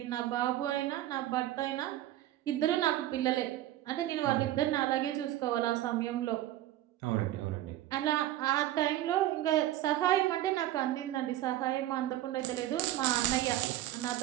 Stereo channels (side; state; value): left; quieter; 14.2 dB